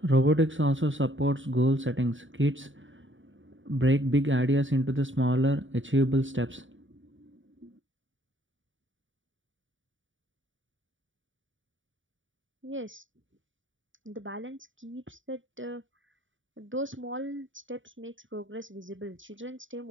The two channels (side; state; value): left; late; 0.56 ms